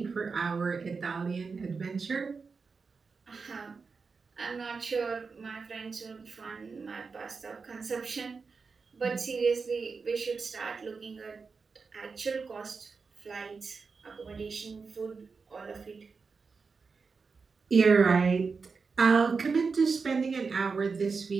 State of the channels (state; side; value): quieter; left; 4.9 dB